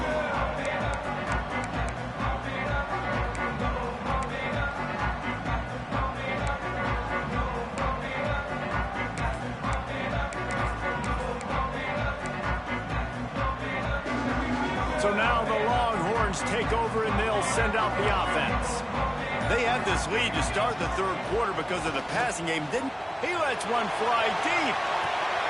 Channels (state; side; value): identical; both; correlation 1.00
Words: So now the Longhorns take over and they'll send out the offense. They had this lead to start the third quarter because of the passing game, didn't he? Lets one fly deep.